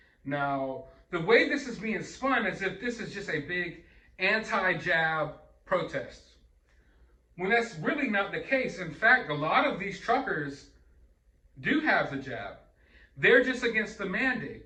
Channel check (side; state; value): both; identical; correlation 1.00